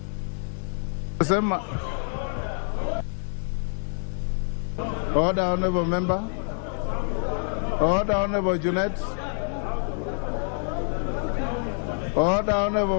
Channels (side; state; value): right; silent; 56 dB below the other